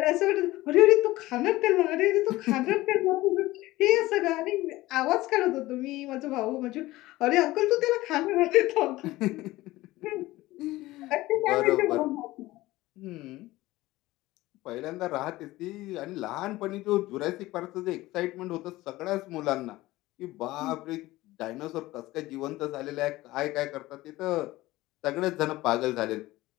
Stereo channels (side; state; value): right; quieter; 18.1 dB